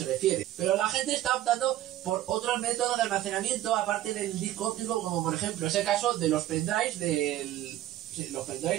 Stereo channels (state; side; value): quieter; left; 13.8 dB